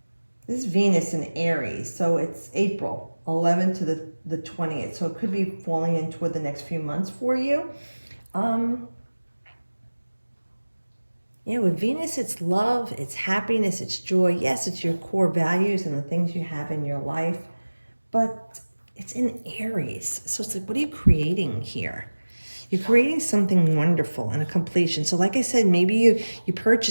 is Venus in Aries, so it's April 11th to the 20th, so it could be falling in toward the next few months for you. Yeah, with Venus, it's love, it's happiness, it's joy. Yes, it's your core values and the things you have in your life, but it's in Aries. So it's like, what are you creating here? You're creating something wonderful and a completion. So like I said, maybe you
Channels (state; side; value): inverted; both; correlation -1.00